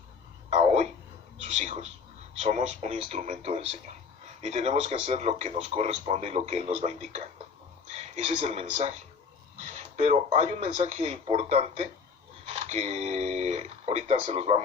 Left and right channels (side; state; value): right; quieter; 5.5 dB